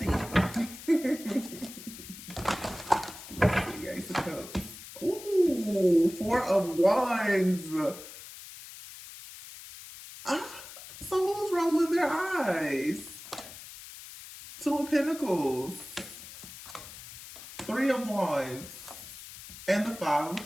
Let's see, Ace of Cups. Ooh, Four of Wands. So who's rolling their eyes? Two of Pentacles. Three of Wands. And the Five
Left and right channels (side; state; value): left; noise; hiss, 14 dB below the sound